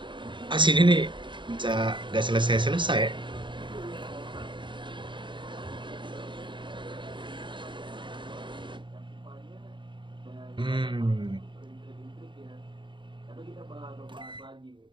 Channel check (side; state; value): left; late; 0.23 ms